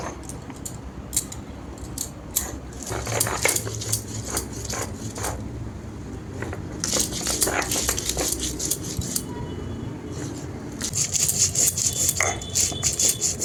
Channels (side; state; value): both; identical; correlation 1.00